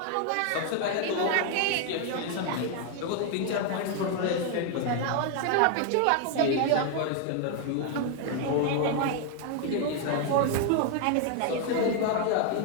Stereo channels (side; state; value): both; different; correlation 0.01